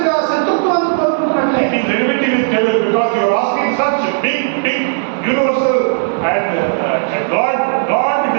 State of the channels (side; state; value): left; silent; 68 dB below the other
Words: శత్రుత్వాన్ని It కోరుకుంటున్నట్లయితే is enmity with devil because you are asking such big, universal and God